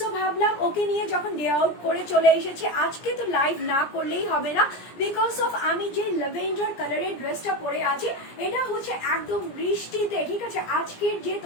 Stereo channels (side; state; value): right; late; 17 ms